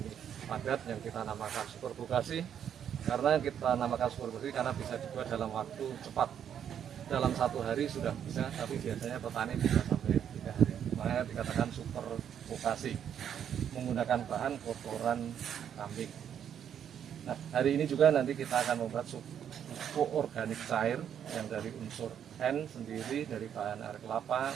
padat yang kita namakan Super Bokasi. Karena kita namakan Super Bokasi karena bisa dibuat dalam waktu cepat. Dalam 1 hari sudah bisa, tapi biasanya petani bisa sampai 3 hari. Makanya dikatakan Super Bokasi, menggunakan bahan kotoran kambing. Nah, hari ini juga nanti kita akan membuat pupuk organik cair yang dari unsur N sendiri dari bahan air kelapa,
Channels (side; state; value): left; quieter; 9.0 dB